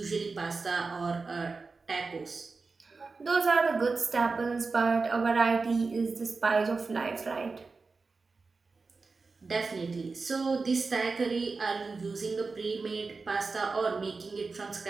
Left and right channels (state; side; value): quieter; left; 4.2 dB